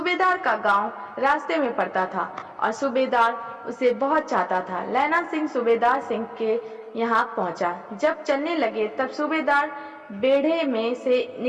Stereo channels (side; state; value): both; identical; correlation 1.00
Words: का गांव रास्ते में पड़ता था और सूबेदार उसे बहुत चाहता था। लैना सिंह सूबेदार सिंह के यहाँ पहुंचा। जब चलने लगे तब सूबेदार बेढ़े में से